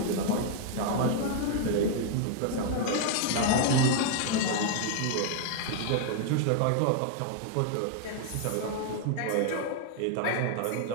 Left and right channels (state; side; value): different; both; correlation 0.00